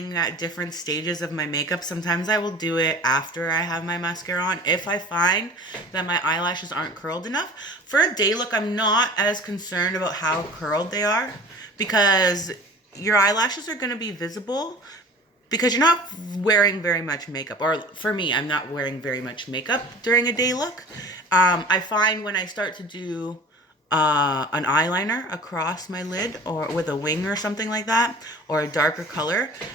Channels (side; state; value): both; normal; correlation 0.42